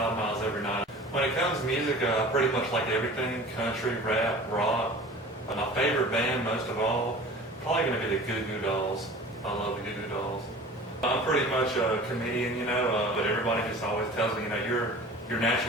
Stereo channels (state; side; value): normal; both; correlation 0.41